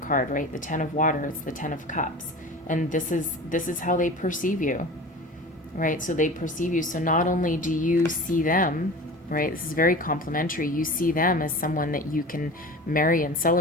right? The Ten of Water. It's the Ten of Cups, and this is how they perceive you, right? So they perceive you. So not only do you see them, right? This is very complimentary. You see them as someone that you can marry and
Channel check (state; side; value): normal; both; correlation 0.36